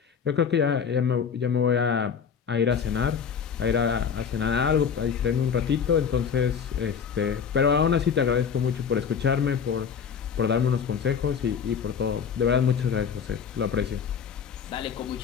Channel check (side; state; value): right; quieter; 6.9 dB